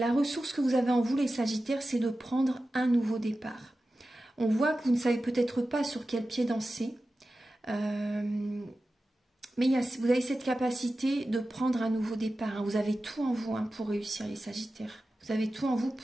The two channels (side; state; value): both; normal; correlation 0.94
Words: ressource que vous avez en vous, les sagittaires, c'est de prendre un nouveau départ. On voit que vous ne savez peut-être pas sur quel pied danser, mais vous avez cette capacité de prendre un nouveau départ. Hein. Vous avez tout en vous pour réussir, les sagittaires. Vous avez tout en vous